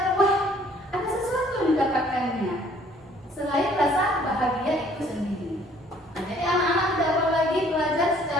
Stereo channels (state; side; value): normal; both; correlation 0.58